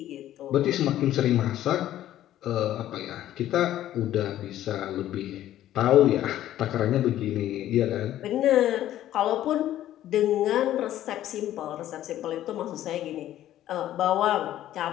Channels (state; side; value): quieter; right; 12.8 dB